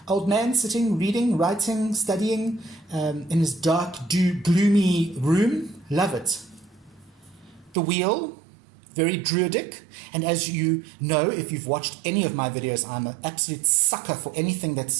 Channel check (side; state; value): left; drops out; at 7.8 s